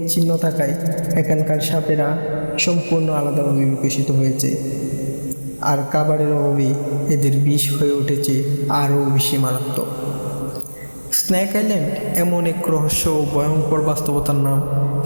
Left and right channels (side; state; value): both; inverted; correlation -1.00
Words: থাকায় এখানকার সাপেরা সম্পূর্ণ আলাদাভাবে বিকশিত হয়েছে, আর খাবারের অভাবে এদের বিষ হয়ে উঠেছে আরও বেশি মারাত্মক। স্নেক আইল্যান্ড এমন এক রহস্য ও ভয়ঙ্কর বাস্তবতার নাম